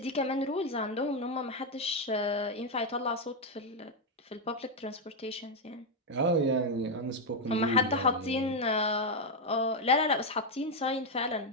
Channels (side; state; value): both; normal; correlation 0.03